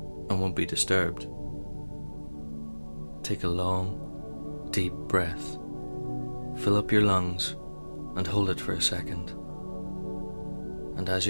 and won't be disturbed, take a long, deep breath. Fill up your lungs and hold it for a second. And as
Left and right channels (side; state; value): both; inverted; correlation -1.00